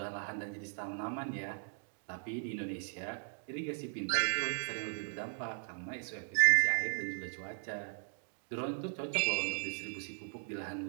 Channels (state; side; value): silent; left; digital silence